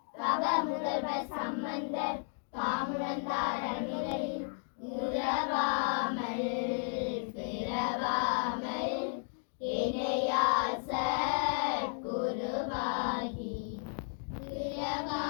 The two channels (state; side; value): silent; right; 55 dB below the other